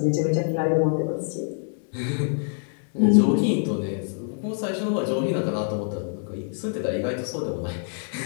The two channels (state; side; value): silent; right; 61 dB below the other